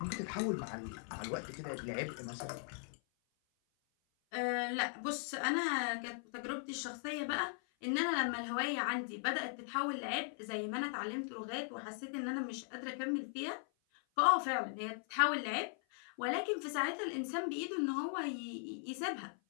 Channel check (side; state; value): right; silent; 52 dB below the other